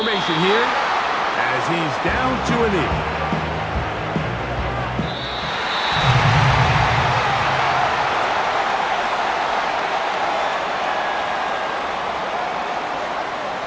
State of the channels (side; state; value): both; identical; correlation 1.00